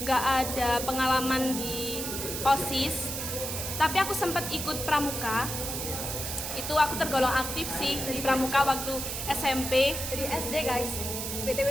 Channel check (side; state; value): right; noise; hiss, 4 dB below the sound